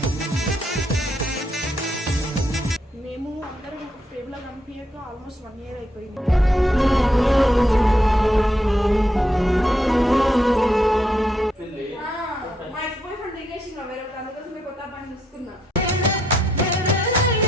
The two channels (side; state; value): both; normal; correlation 0.77